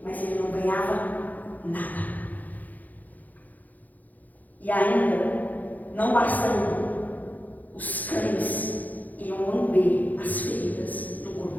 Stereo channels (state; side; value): late; right; 0.081 ms